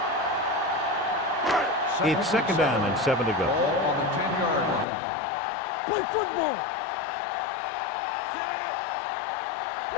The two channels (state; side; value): drops out; right; at 4.9 s